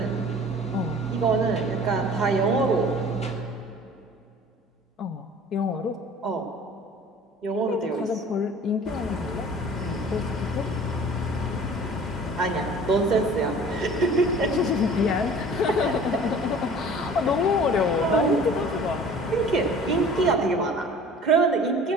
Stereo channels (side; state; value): both; normal; correlation 0.46